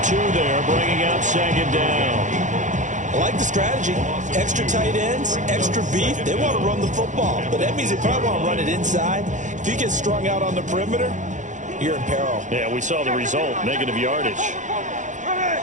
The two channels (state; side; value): late; left; 0.36 ms